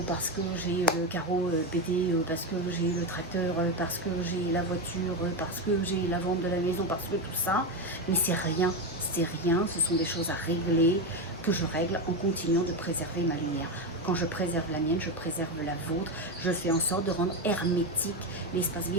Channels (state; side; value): normal; both; correlation 0.13